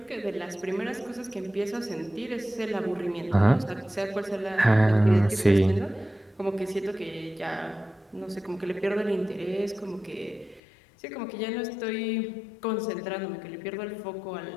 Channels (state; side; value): drops out; right; at 10.6 s